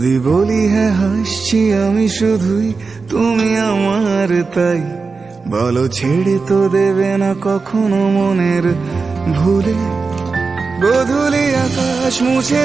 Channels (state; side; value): quieter; left; 4.4 dB